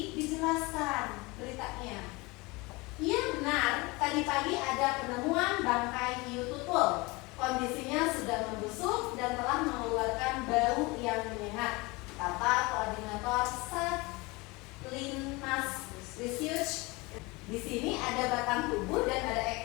dijelaskan beritanya. Iya benar, tadi pagi ada penemuan bangkai hiu tutul. Kondisinya sudah membusuk dan telah mengeluarkan bau yang menyengat, kata koordinator Satlinmas Research. Di sini ada batang tubuh dan ada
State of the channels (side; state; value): right; quieter; 24.5 dB